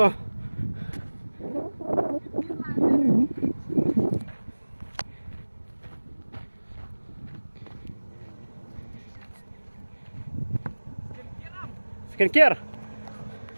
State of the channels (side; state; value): both; inverted; correlation -1.00